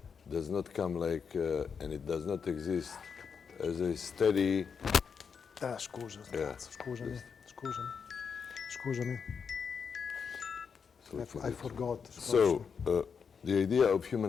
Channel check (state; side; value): quieter; right; 6.3 dB